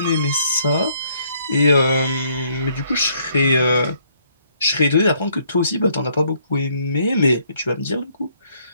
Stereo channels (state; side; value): inverted; both; correlation -0.68